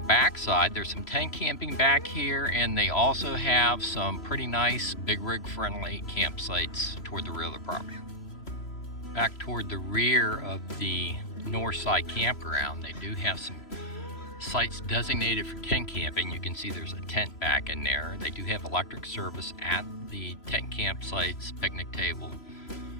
back side. There's some tent camping back here, and they also have some pretty nice big rig friendly campsites toward the rear of the property. Back toward the rear of the north side campground, they do have some sites designated for tent camping. You can see there's a tent back in there. They do have electric service at the tent campsites, picnic table,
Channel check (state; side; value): late; right; 3.0 ms